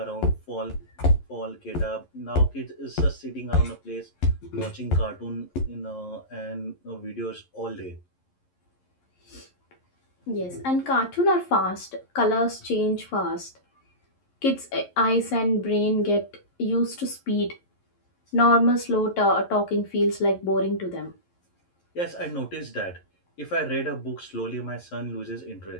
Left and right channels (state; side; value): late; right; 11 ms